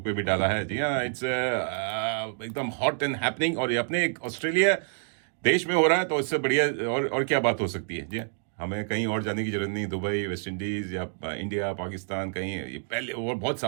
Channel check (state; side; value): silent; left; digital silence